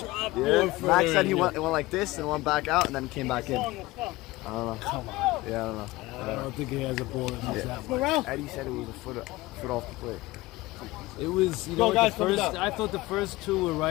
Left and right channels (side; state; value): right; quieter; 19.4 dB